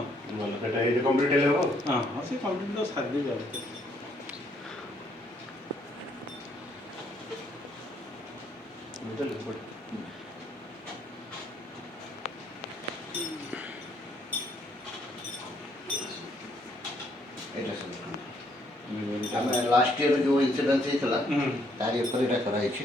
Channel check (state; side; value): normal; both; correlation 0.69